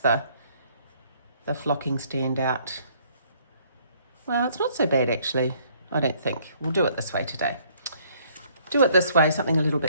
flocking stand out. Well, it's not so bad actually, I don't think. We'll do it this way today. Do it this way, something a little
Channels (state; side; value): inverted; both; correlation -0.63